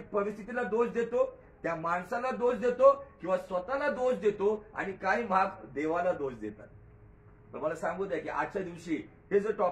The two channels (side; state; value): both; identical; correlation 1.00